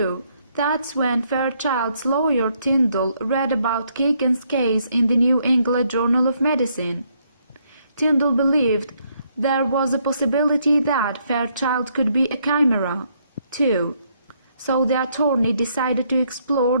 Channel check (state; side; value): inverted; both; correlation -0.72